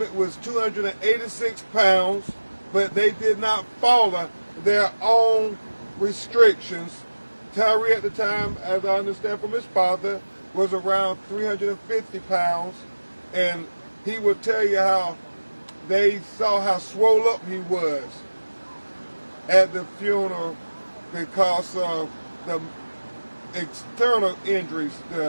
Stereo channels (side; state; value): both; inverted; correlation -1.00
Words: was 286 pounds, but they did not follow their own restrictions. Tyre at the time, as I understand from his father, was around 350 pounds, and he would tell you how they saw how swole up he was at the funeral because of the external injuries,